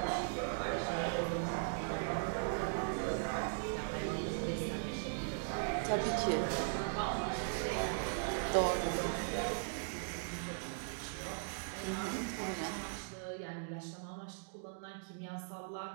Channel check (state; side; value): silent; left; digital silence